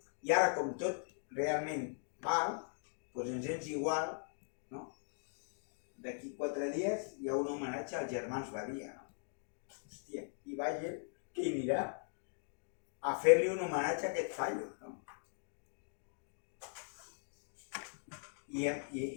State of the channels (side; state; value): right; silent; digital silence